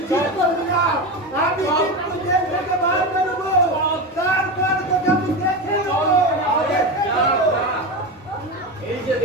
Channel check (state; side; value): normal; both; correlation 0.20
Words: ঠিক করবি না। আমি কিন্তু জেল থেকে বার করবো, তারপর তোকে আমি দেখে নেবো। এই যে